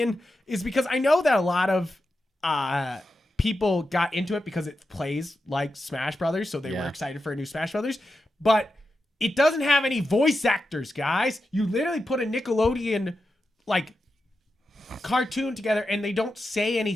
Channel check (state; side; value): normal; both; correlation 0.89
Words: is because I know that a lot of people got into it because it plays like Smash Brothers, so they were excited for a new Smash Brothers, but it doesn't have any voice actors, guys. You literally put a Nickelodeon like cartoon together and they don't say